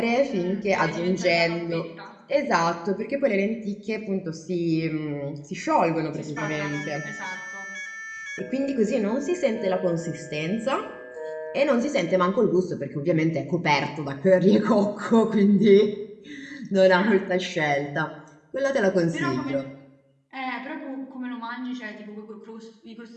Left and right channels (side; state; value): both; identical; correlation 1.00